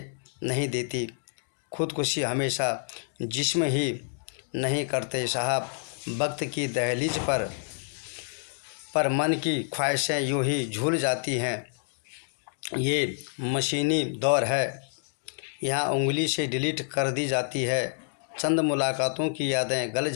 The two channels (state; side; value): silent; right; digital silence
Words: नहीं देती। खुदकुशी हमेशा जिस्म ही नहीं करते साहब, वक्त की दहलीज पर मन की ख्वाहिशें यूं ही झूल जाती हैं। ये मशीनी दौर है, यहाँ उंगली से डिलीट कर दी जाती है। चंद मुलाकातों की यादें गल